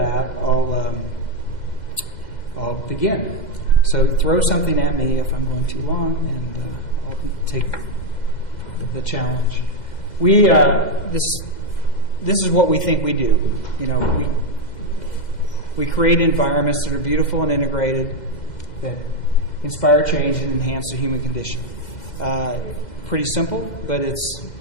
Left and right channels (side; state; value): right; late; 2.0 ms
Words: I'll begin. So throw something at me if I'm going too long, and I'll take the challenge. This is what we think we do. We create environments that are beautiful and integrated, that inspire change and enhance the human condition. Pretty simple, but it's